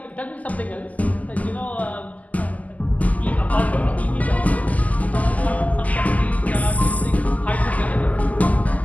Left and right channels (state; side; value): late; right; 0.075 ms